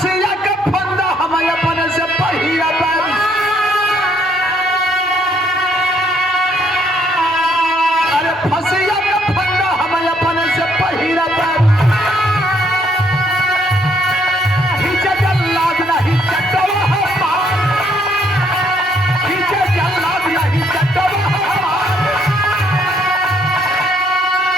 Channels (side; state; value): both; normal; correlation 0.69